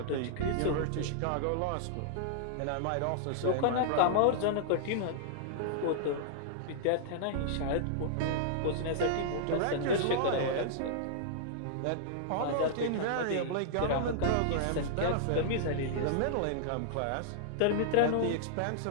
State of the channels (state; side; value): different; both; correlation -0.01